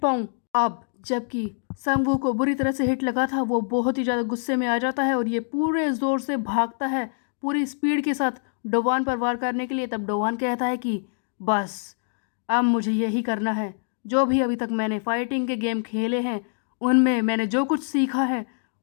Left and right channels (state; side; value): silent; right; digital silence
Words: पाऊँ। अब जबकि संगवू को बुरी तरह से हिट लगा था, वो बहुत ही ज़्यादा गुस्से में आ जाता है और ये पूरे ज़ोर से भागता है पूरी स्पीड के साथ डोवान पर वार करने के लिए। तब डोवान कहता है कि बस अब मुझे यही करना है, जो भी अभी तक मैंने फाइटिंग के गेम खेले हैं उनमें मैंने जो कुछ सीखा है